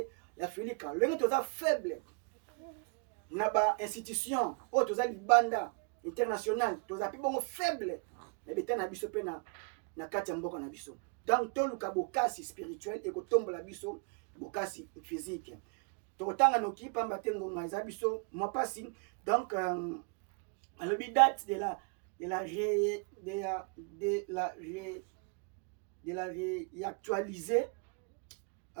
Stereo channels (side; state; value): left; quieter; 37.6 dB